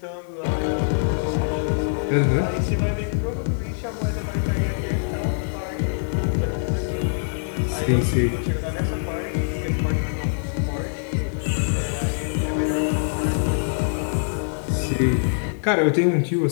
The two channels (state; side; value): silent; right; digital silence